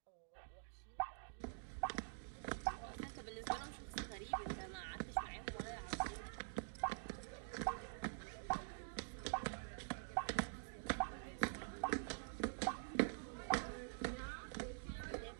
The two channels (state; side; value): silent; left; digital silence